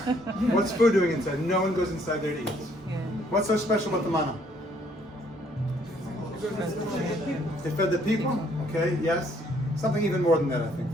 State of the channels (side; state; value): both; normal; correlation 0.65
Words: What's food doing inside? No one goes inside there to eat. What's so special about the manna? It fed the people. Okay, yes. Something even more than that, I think.